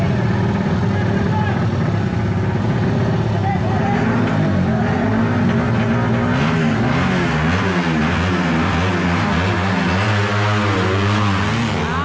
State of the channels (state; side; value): identical; both; correlation 1.00